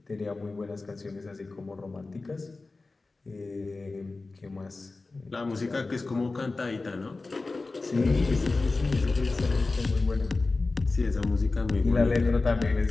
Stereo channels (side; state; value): right; quieter; 3.5 dB